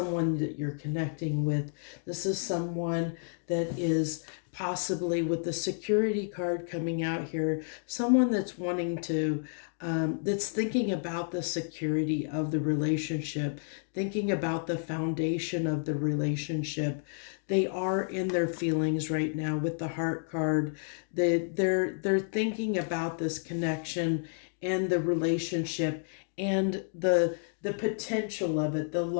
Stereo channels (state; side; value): silent; right; digital silence